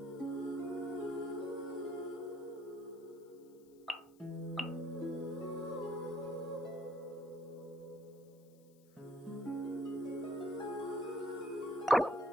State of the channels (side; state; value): left; noise; hiss, 30 dB below the sound